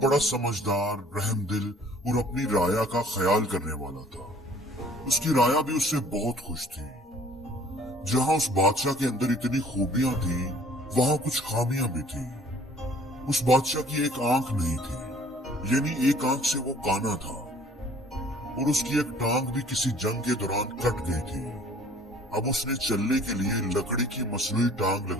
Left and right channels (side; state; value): both; normal; correlation 0.54